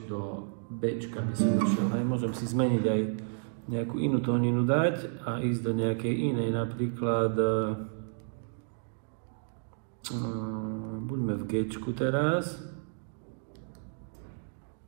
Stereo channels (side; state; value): left; silent; digital silence